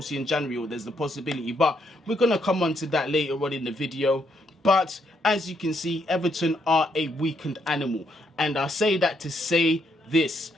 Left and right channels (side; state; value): both; normal; correlation 0.75